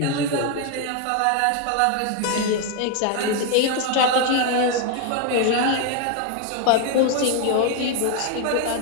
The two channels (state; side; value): different; both; correlation 0.01